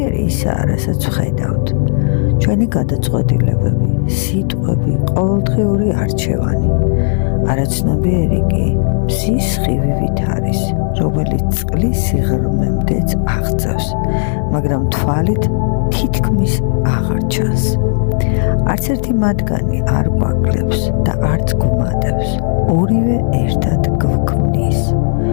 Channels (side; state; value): right; silent; digital silence